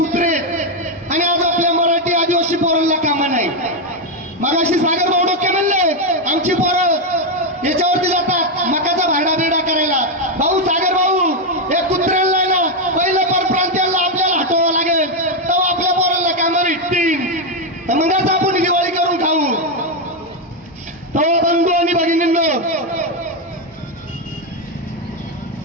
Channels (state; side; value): normal; both; correlation 0.05